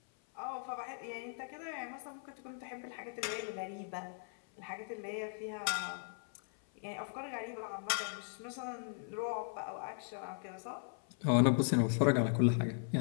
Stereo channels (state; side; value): silent; right; 52 dB below the other